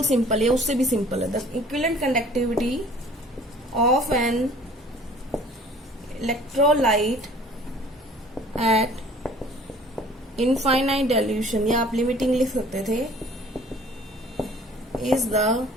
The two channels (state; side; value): normal; both; correlation 0.51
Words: सिंपल है, उससे भी सिंपल है, the equivalent conductivity of an electrolyte at infinite dilution, या आप लिमिटिंग लिख सकते थे, is the